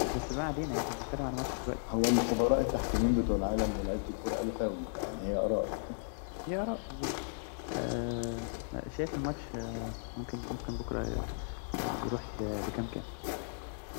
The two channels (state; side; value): silent; right; digital silence